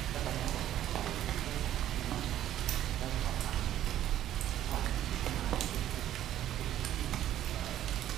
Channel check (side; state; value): left; quieter; 12.2 dB